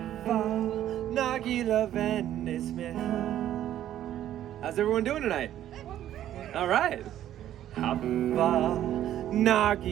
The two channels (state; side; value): quieter; left; 11.9 dB